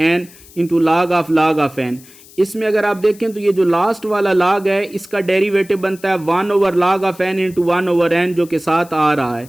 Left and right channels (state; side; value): noise; left; hiss, 23 dB below the sound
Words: n into log of n. इसमें अगर आप देखें तो ये जो लास्ट वाला log है इसका डेरिवेटिव बनता है 1/log of n into 1/n जो के साथ आ रहा है.